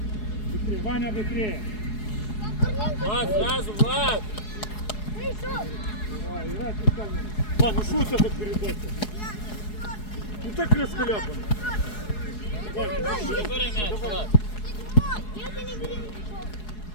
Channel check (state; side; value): late; right; 4.7 ms